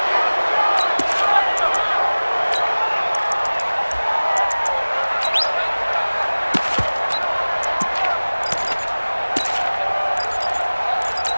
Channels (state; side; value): inverted; both; correlation -1.00